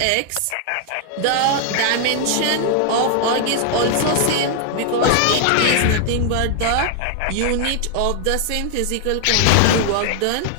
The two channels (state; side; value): different; both; correlation 0.00